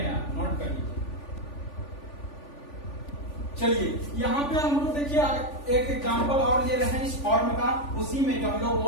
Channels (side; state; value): right; late; 3.5 ms